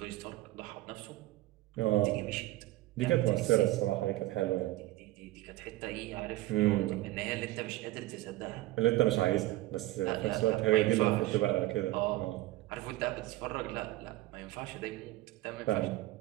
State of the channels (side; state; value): left; quieter; 17.3 dB